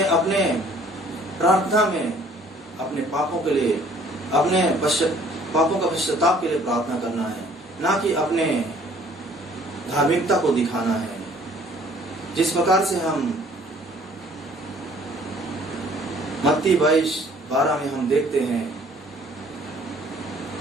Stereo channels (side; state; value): both; normal; correlation 0.57